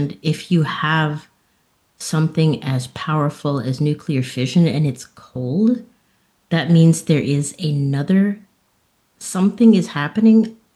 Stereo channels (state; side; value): identical; both; correlation 1.00